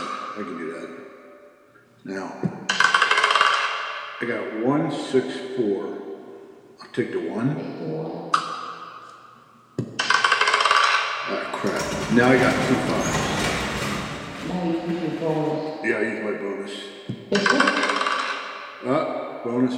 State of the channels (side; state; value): both; identical; correlation 1.00